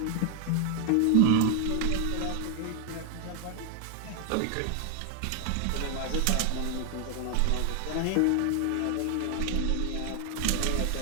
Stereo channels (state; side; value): different; both; correlation 0.00